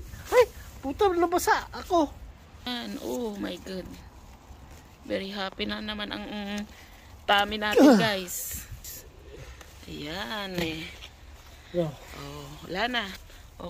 Ay, puta, nabasa ako. Oh my god. Very happy na naman ang tummy natin, guys. Ayan eh. Oh, wala na.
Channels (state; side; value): identical; both; correlation 1.00